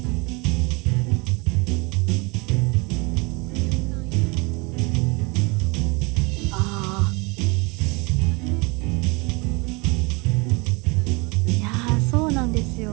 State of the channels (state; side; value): quieter; left; 28.4 dB